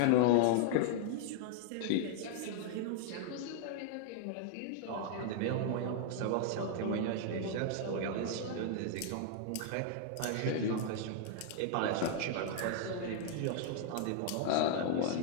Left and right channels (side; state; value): both; different; correlation 0.00